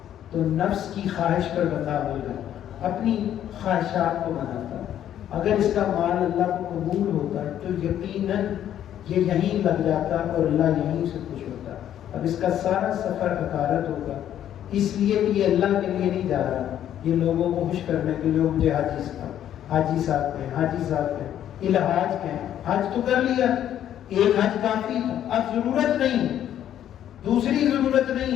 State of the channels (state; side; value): quieter; right; 10.8 dB